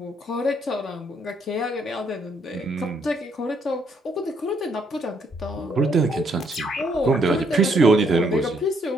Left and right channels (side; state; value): both; normal; correlation 0.71